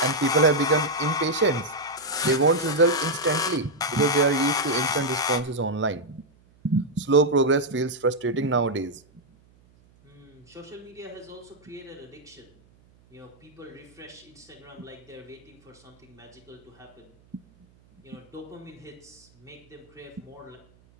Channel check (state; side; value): noise; right; hum, 30 dB below the sound